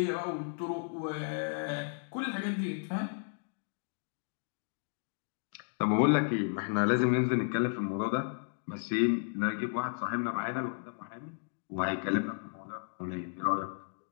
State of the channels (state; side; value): silent; right; digital silence